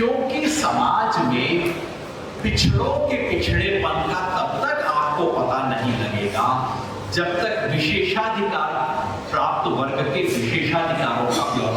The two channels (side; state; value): both; identical; correlation 1.00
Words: समाज में पिछड़ों के पिछड़ेपन का तब तक आपको पता नहीं लगेगा जब तक विशेषाधिकार प्राप्त वर्ग के विशेषाधिकारों का